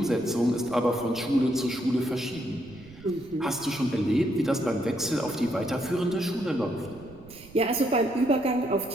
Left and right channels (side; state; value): right; noise; rumble, 21 dB below the sound